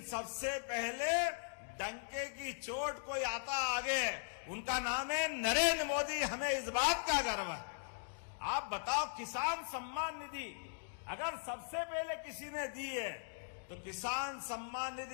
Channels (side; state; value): right; silent; digital silence